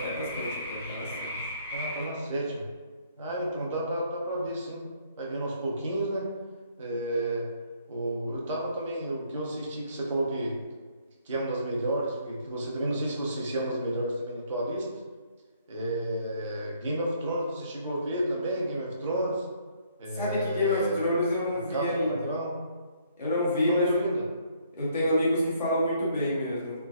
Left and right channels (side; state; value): both; inverted; correlation -0.66